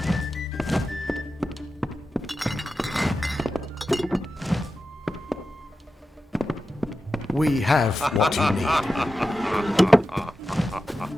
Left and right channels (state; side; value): normal; both; correlation 0.92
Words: We have what you need.